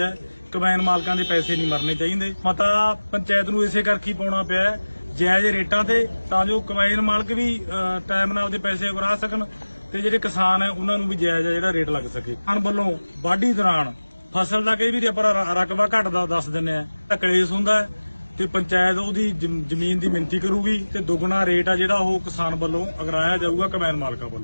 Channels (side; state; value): both; inverted; correlation -1.00